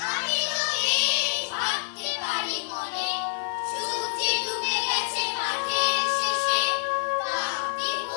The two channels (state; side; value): silent; right; digital silence